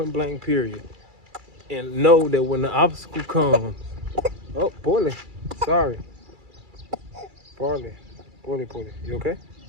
blank, period. And know that when the obstacle comes, oh, Poorly, sorry. Poorly, you okay?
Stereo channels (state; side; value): late; left; 2.3 ms